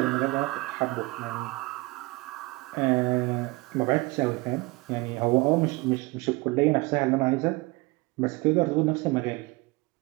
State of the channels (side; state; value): left; quieter; 24.5 dB